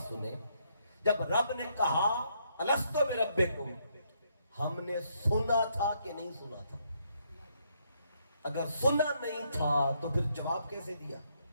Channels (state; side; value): inverted; both; correlation -0.73